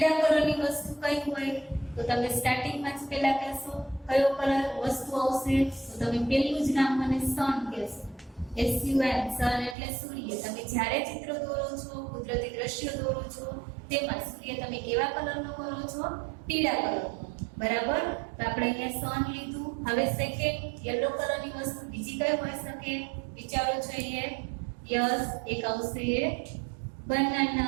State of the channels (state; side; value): drops out; left; at 9.8 s